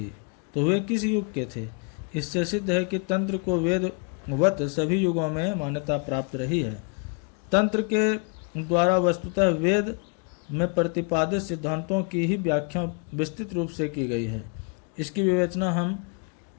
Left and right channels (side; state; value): right; quieter; 36.3 dB